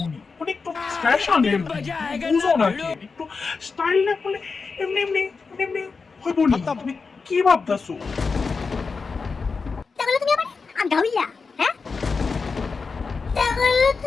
নি? মানে একটু ফ্যাশনের বুঝো না কি? একটু স্টাইল না করলে এমনি এমনি এমনি হইব নি? তুমি কি ভাবতাছো? তাহলে তুমি আমার আন্ধা হইলা? হ্যাঁ, তাহলে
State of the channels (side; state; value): right; quieter; 4.7 dB